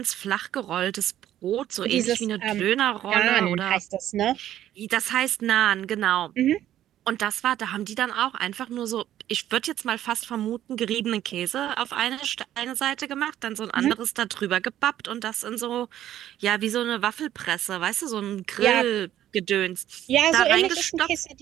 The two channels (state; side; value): quieter; left; 12.1 dB